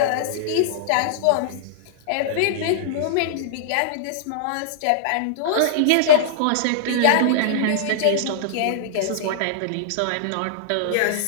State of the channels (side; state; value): both; different; correlation -0.02